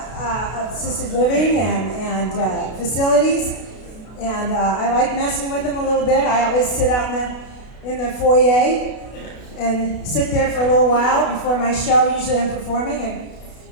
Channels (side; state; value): right; late; 32 ms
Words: assisted living and facilities, and I like messing with them a little bit. I always sit out in the foyer and sit there for a little while before my show. Usually I'm performing, and